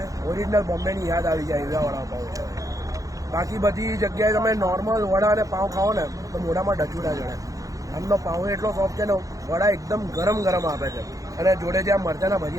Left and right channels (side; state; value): left; late; 0.17 ms